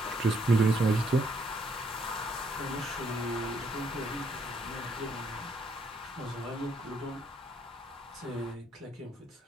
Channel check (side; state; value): both; normal; correlation 0.71